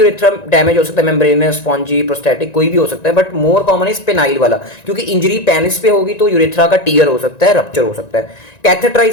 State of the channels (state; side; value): late; right; 1.9 ms